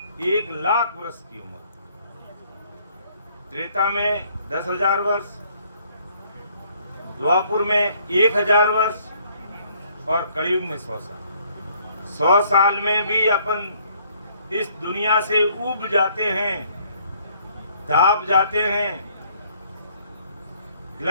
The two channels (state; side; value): inverted; both; correlation -0.64